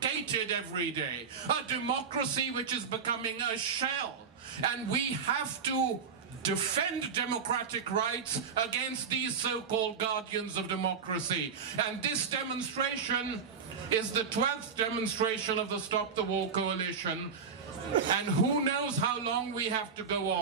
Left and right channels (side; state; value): left; quieter; 6.2 dB